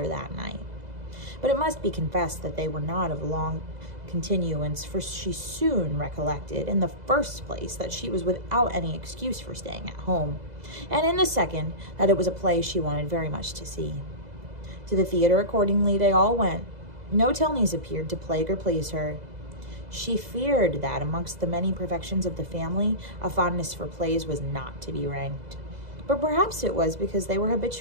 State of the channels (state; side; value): late; left; 2.0 ms